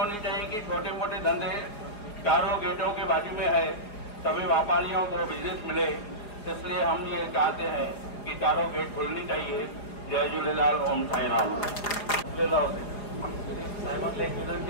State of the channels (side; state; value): right; late; 4.9 ms